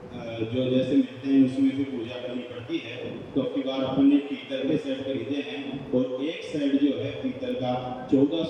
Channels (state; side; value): identical; both; correlation 1.00